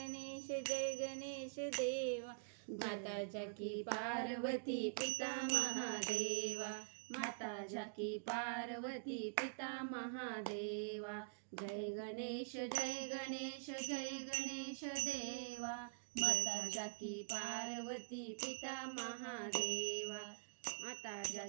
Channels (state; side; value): silent; left; digital silence